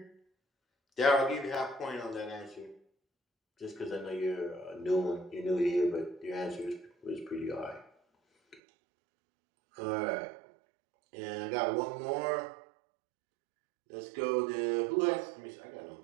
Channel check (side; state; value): left; drops out; at 8.6 s